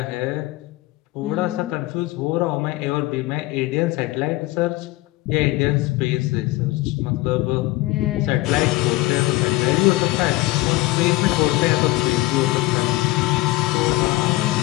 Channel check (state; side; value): quieter; right; 19.5 dB